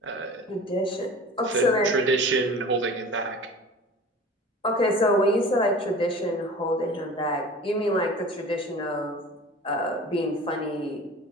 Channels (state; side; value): normal; both; correlation 0.40